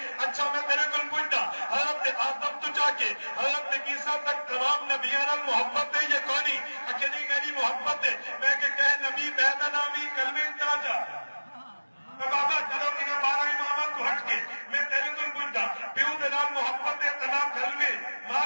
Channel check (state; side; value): inverted; both; correlation -1.00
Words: اچھا میں تیرے کول پوچھدا حضرت آدم تو جا کے حضرت عیسیٰ تک تمام نبیاں نال محبت ہے یہ کونی کہ نہیں میری محبت ہے میں کہ کہے نبی میں دا نام ہی کلمے انتا جا بابا چلو انہیں 12 امامات کو ہٹ کے میں تیرے کو پوچھتا پیو دنا محبت تنا کلمے ماں